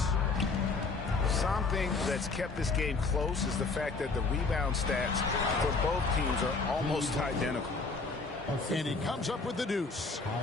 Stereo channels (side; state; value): right; quieter; 4.0 dB